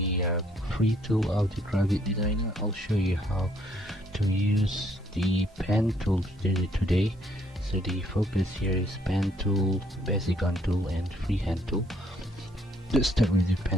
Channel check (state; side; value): normal; both; correlation 0.67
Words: free tool of the Gravit Designer. I'll show you how to use the pen tool today. So the focus here is pen tool, Bezigon tool, and freehand tool. Let's start with the